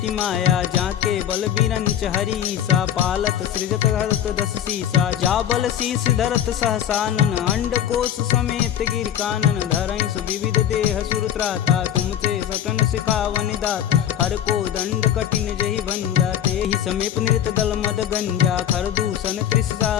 माया। जाके बल बीरंच हरीसा, पालत सृजत हरत दस सीसा। जा बल शीस धरत सहसानन, अंड कोश समेत गिर कानन। धरई सुविविध देह सुर त्राता, तुमसे सटन सिखावन दात। हर को दंड कठिन जहि भंजा, तेहि समीप नृत दल मद गंजा। खरदूषण त्रिषा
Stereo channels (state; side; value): quieter; right; 10.3 dB